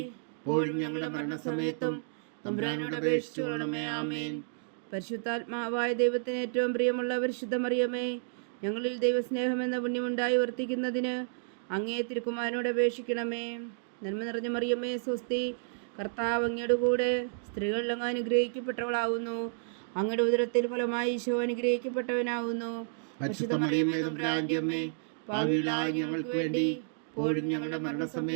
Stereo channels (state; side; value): silent; left; digital silence